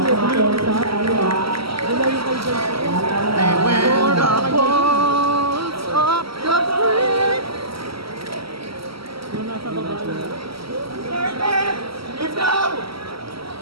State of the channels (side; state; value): left; late; 0.75 ms